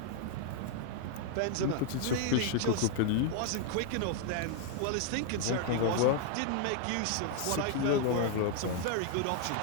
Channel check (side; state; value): both; different; correlation 0.00